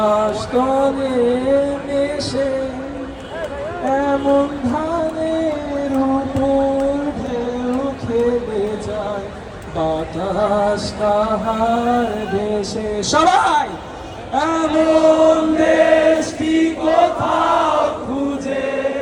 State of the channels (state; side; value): identical; both; correlation 1.00